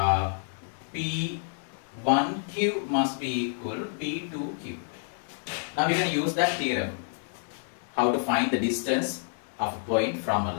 P1Q must be equal to P2Q. Now we can use that theorem. How to find the distance of a point from a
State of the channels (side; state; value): right; silent; 59 dB below the other